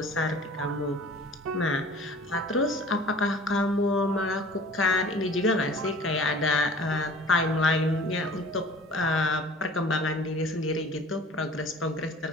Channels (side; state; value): both; normal; correlation 0.46